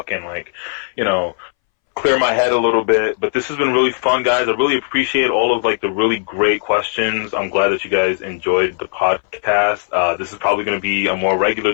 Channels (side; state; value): right; silent; 65 dB below the other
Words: and like, you know, clear my head a little bit. But this has been really fun, guys. I really appreciate all of like the really great questions. I'm glad that you guys enjoyed the podcast. This is probably going to be a more regular